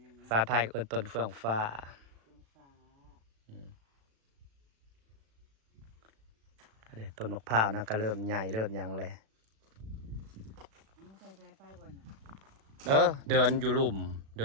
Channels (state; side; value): late; left; 36 ms